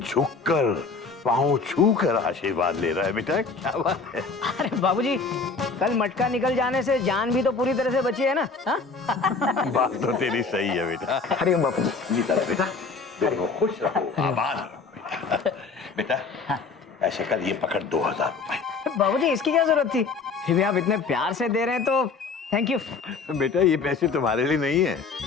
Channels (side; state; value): right; quieter; 4.5 dB